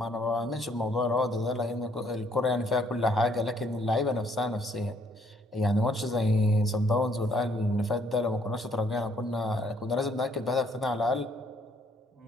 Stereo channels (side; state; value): both; normal; correlation 0.66